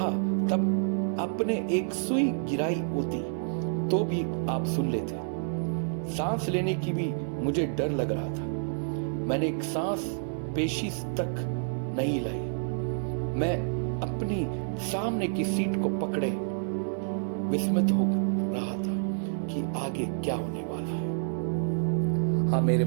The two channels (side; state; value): left; silent; digital silence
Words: तब अपने एक सुई गिराई होती, तो भी आप सुन लेते। सांस लेने की भी मुझे डर लग रहा था। मैंने एक सांस पेशी तक नहीं लाई। मैं अपनी सामने की सीट को पकड़े विस्मित हो रहा था कि आगे क्या होने वाला है। हाँ मेरे